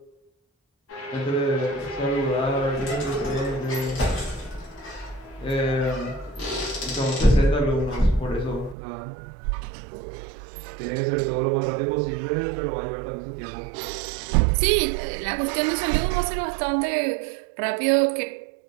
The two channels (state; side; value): drops out; left; at 8.8 s